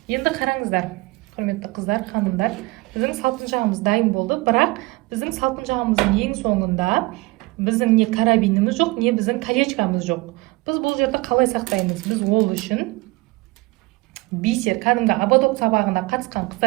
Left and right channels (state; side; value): quieter; left; 23.0 dB